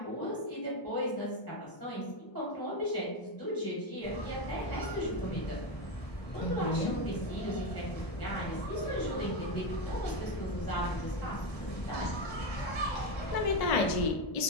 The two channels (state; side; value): late; right; 1.0 ms